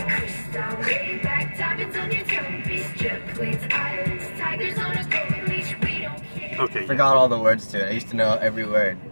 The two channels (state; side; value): inverted; both; correlation -1.00